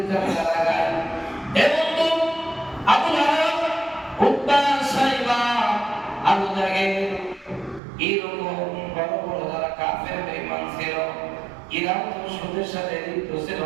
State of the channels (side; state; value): left; drops out; at 7.8 s